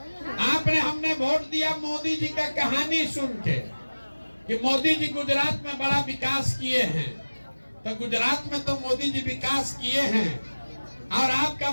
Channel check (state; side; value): inverted; both; correlation -1.00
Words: हमने वोट दिया मोदी जी का कहानी सुन के कि मोदी जी गुजरात में बड़ा विकास किए हैं। तो गुजरात में तो मोदी जी विकास किए हैं, और आपका